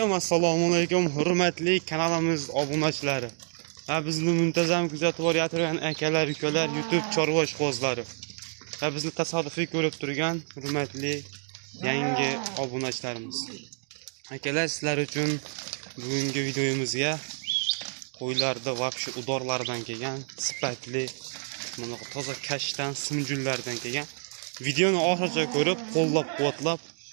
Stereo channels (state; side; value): silent; left; 59 dB below the other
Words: hurmatli kanalimiz obunachilari. Va bizni muntazam kuzatib borayotgan akalar, ukalar, YouTube chorva ishqibozlari. Va bizni tasodifiy ko'rib turgan hurmatli yangi obunachilarimiz. Akalar, sizlar uchun bugungi videomizga qo'ylarda va shu udorlardan kelgan sifatli, mana toza kashdan simjullardan kelgan videoni oxirigacha ko'rib, qo'llab-quvvatlab